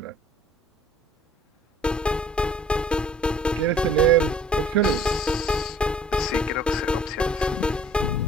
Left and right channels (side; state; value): both; normal; correlation 0.54